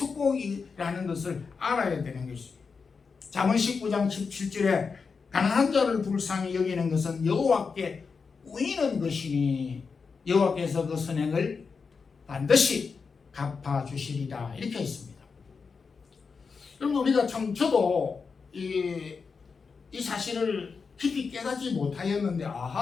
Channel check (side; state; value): right; quieter; 5.2 dB